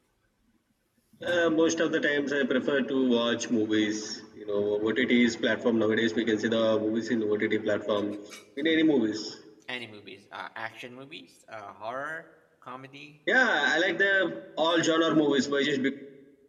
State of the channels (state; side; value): identical; both; correlation 1.00